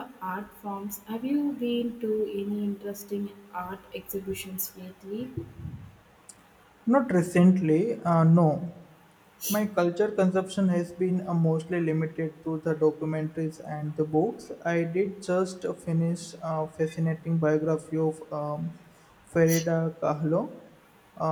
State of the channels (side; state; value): both; identical; correlation 1.00